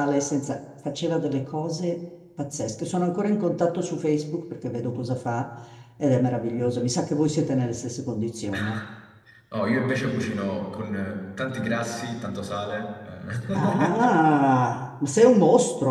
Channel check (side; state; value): both; identical; correlation 1.00